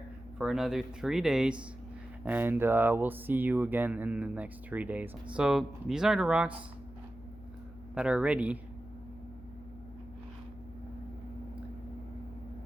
for another 3 days, and we'll see you again in the next 3 days. So these are the rocks that are ready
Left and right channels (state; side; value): noise; left; hum, 18 dB below the sound